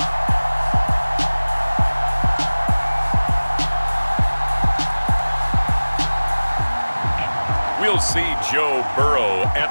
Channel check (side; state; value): both; inverted; correlation -1.00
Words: We'll see Joe Burrow and